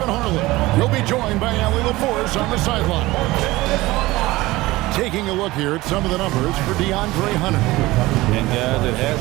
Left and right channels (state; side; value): quieter; left; 19.3 dB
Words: Harlan. You'll be joined by Allie LaForce on the sideline. Taking a look here at some of the numbers for DeAndre Hunter. And guys, it